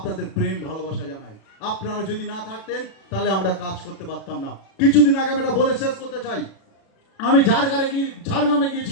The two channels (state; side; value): late; right; 37 ms